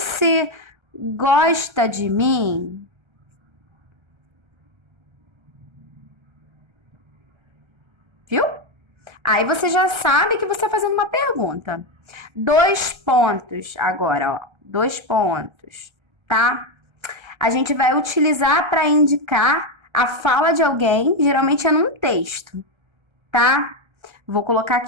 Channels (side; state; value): left; late; 1.3 ms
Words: gosta de mim? Viu? Aí você já sabe que você está fazendo uma pergunta. 2 pontos agora, ó. 2 pontos, tá? A gente vai utilizar para indicar a fala de alguém, geralmente é num texto, tá? Vou colocar